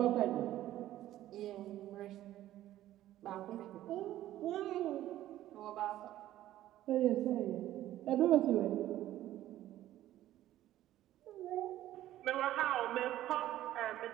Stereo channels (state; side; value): quieter; left; 13.7 dB